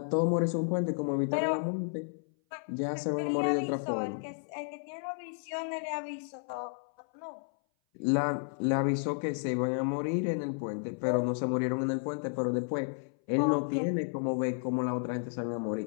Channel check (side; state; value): right; silent; 56 dB below the other